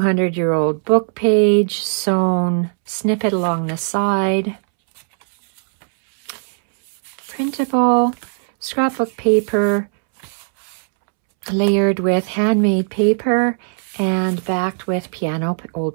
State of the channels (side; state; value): left; silent; 67 dB below the other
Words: book page. Sewn snippet along the side. Printable. Scrapbook paper. Layered with handmade paper and backed with